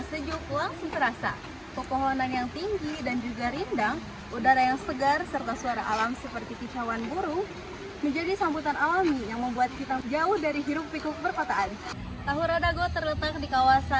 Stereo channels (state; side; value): identical; both; correlation 1.00